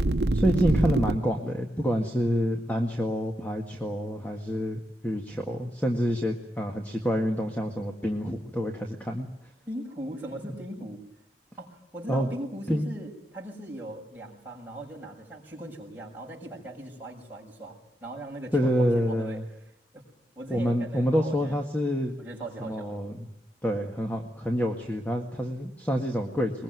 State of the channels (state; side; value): normal; both; correlation 0.84